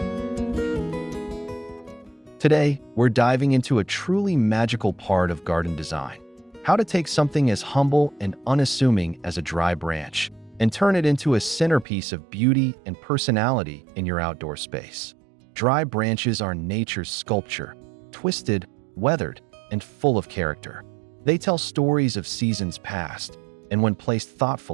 Today, we're diving into a truly magical part of garden design: how to take something as humble and unassuming as a dry branch and turn it into a centerpiece of beauty and personality in your outdoor space. Dry branches are nature's sculpture, twisted, weathered, and full of character. They tell stories of seasons past, and when placed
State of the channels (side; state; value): left; drops out; at 11.9 s